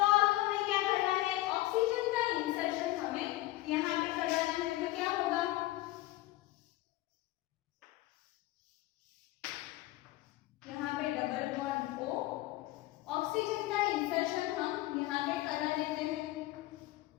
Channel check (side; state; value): right; quieter; 17.5 dB